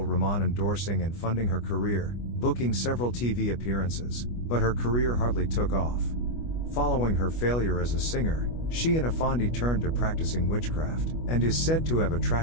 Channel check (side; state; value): right; late; 25 ms